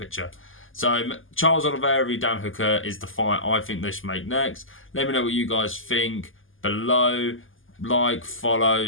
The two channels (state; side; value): late; right; 0.58 ms